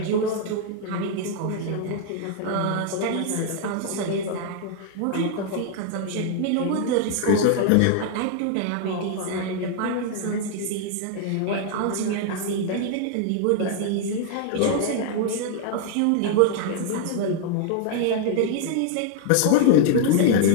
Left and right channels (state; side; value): different; both; correlation 0.00